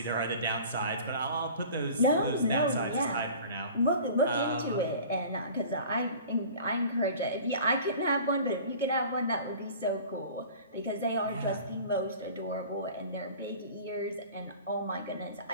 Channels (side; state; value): both; inverted; correlation -0.43